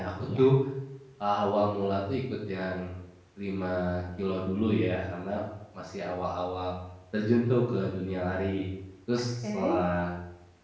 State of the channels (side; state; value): both; identical; correlation 1.00